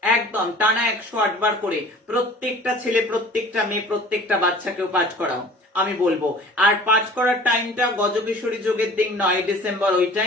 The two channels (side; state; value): both; normal; correlation 0.46